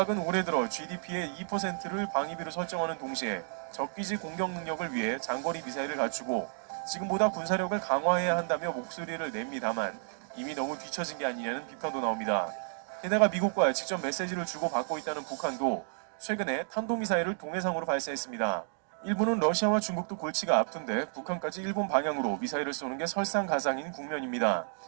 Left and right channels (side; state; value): left; silent; digital silence